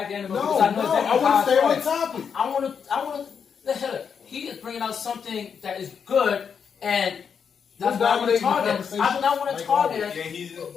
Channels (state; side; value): quieter; right; 6.8 dB